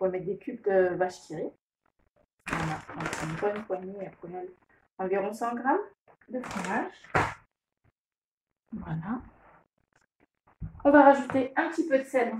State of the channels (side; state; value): both; identical; correlation 1.00